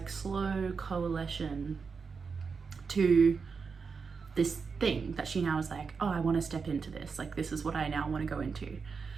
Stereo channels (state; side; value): quieter; left; 5.3 dB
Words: slow coalition to this thing that she now is like, oh, I want to step into this, like this is what I now want to go into.